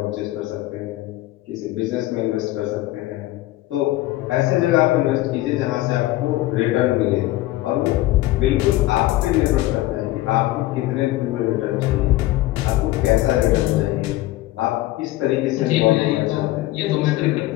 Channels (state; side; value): quieter; right; 16.9 dB